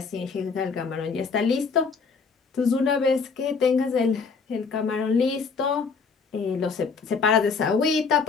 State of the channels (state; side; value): quieter; right; 5.1 dB